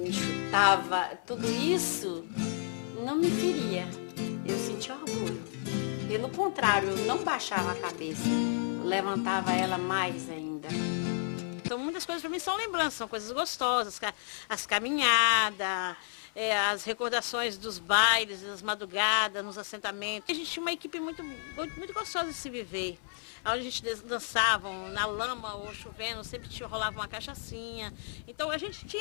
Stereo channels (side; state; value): right; silent; 56 dB below the other